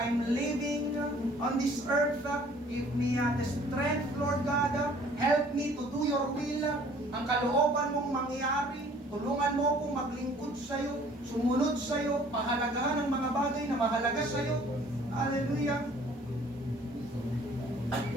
living on this earth. Give me the strength, Lord God. Help me to do your will. Ang kalooban mong mangyari, tulungan mo akong maglingkod sa iyo, sumunod sa iyo, pahalagahan ang mga bagay na mahalaga sa iyo. Hallelujah.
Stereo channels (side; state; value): both; normal; correlation 0.55